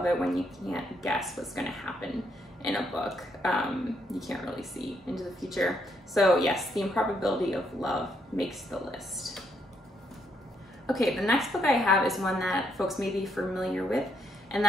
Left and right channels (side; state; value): both; normal; correlation 0.75